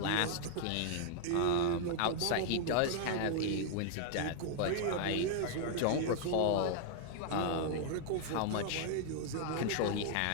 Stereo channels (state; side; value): different; both; correlation 0.00